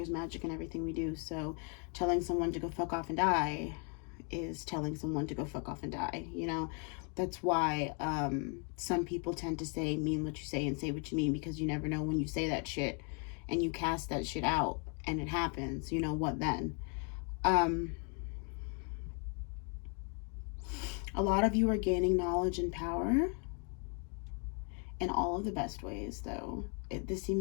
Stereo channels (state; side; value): quieter; right; 38.5 dB